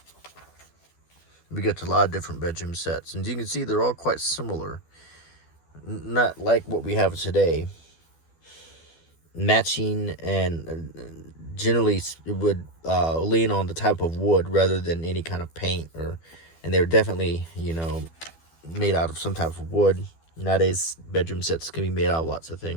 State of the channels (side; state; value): right; late; 12 ms